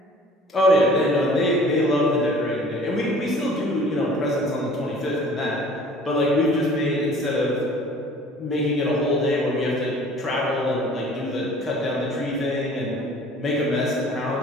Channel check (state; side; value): normal; both; correlation 0.49